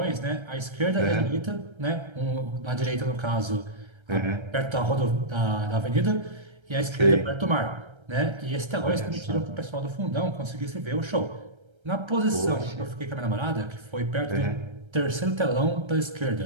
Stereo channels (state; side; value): late; left; 1.3 ms